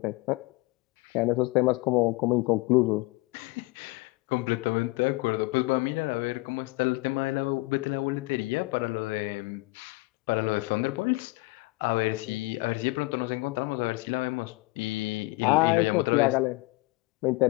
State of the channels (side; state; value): right; quieter; 23.6 dB